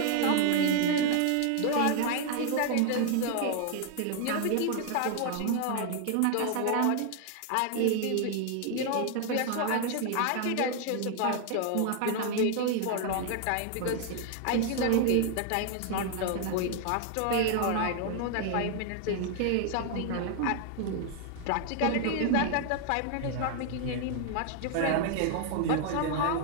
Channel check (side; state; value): both; different; correlation 0.00